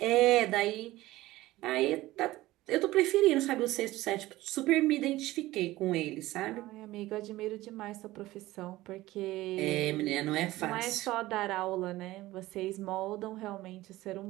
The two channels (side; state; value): left; quieter; 17.4 dB